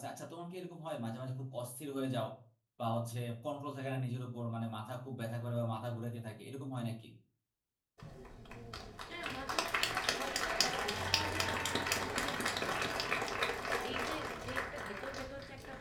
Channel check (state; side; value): identical; both; correlation 1.00